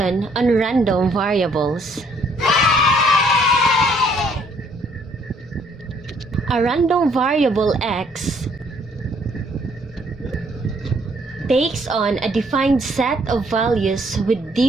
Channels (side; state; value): both; normal; correlation 0.65